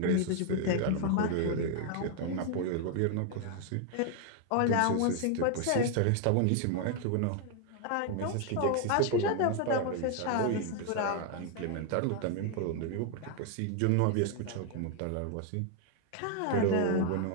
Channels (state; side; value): different; both; correlation 0.00